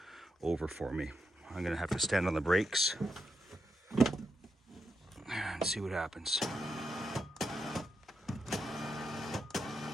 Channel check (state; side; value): normal; both; correlation 0.84